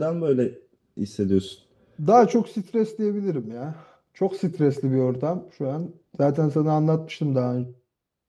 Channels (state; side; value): identical; both; correlation 1.00